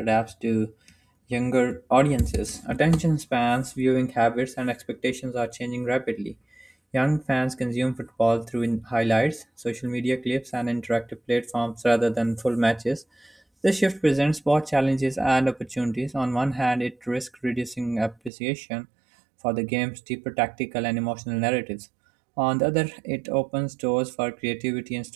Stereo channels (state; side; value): drops out; left; at 18.3 s